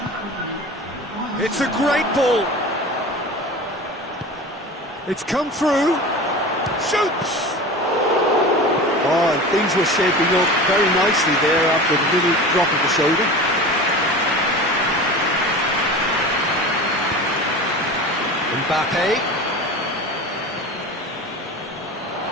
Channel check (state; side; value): normal; both; correlation 0.33